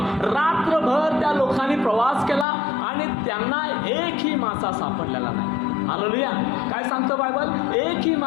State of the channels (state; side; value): drops out; right; at 2.5 s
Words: रात्रभर त्या लोकांनी प्रवास केला आणि त्यांना एकही मासा सापडलेला नाही. हालेलुया. काय सांगतं बायबल? एकही